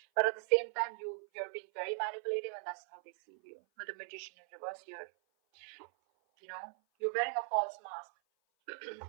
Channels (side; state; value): left; silent; 52 dB below the other